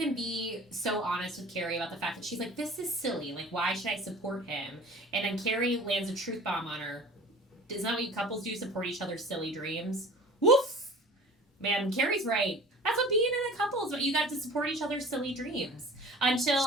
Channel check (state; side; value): normal; both; correlation 0.42